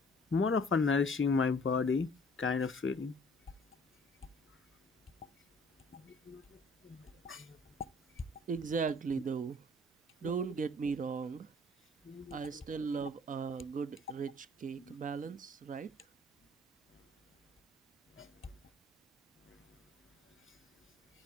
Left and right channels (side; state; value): both; normal; correlation 0.55